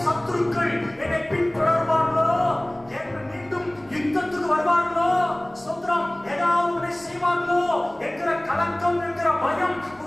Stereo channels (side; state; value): right; noise; hum, 29 dB below the sound